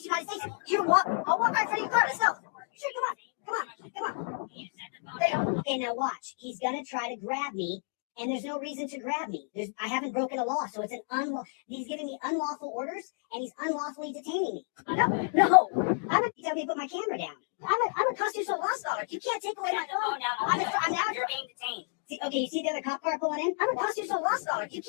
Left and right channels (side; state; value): right; silent; 56 dB below the other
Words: United States. I'll walk right in front of your car. Let's go. Sure, come on. Okay, now watch. He's gonna try to grab me, and there's no reason to grab me. I haven't broken a law, so it's he's giving me unlawful orders, and he's unlawfully detaining me. No. You tell me to put my camera down. I'm a constitutional law scholar. You can't take away my phone. You're being detained. Okay, you see the other cop car pulling in? I'm a constitutional law scholar. You